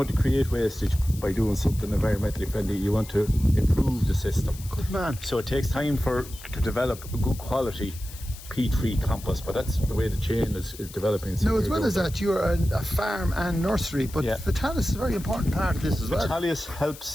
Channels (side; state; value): left; noise; hiss, 16 dB below the sound